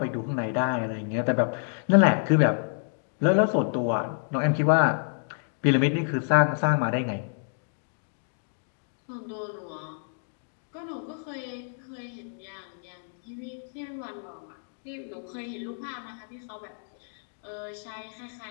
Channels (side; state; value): right; silent; digital silence